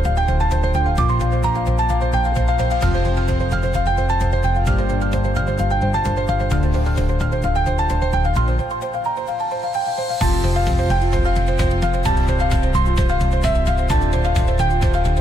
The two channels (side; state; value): both; normal; correlation 0.82